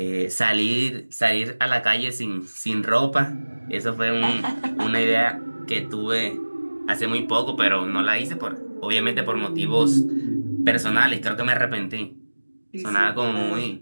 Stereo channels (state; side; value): inverted; both; correlation -1.00